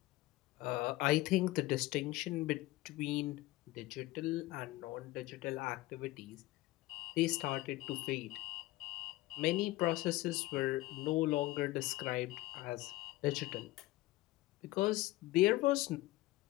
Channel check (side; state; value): right; quieter; 18.2 dB